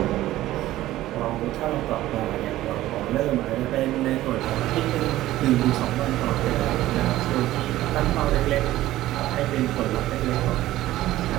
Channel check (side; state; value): left; quieter; 15.3 dB